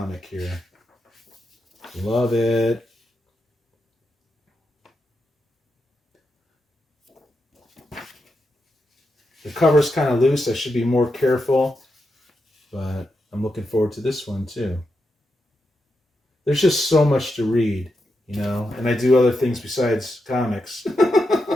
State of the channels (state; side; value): normal; both; correlation 0.86